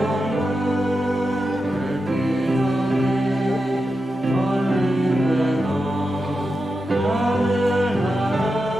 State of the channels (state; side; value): normal; both; correlation 0.89